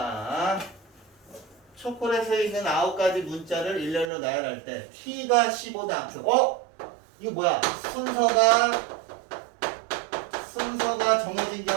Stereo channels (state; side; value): drops out; left; at 4.1 s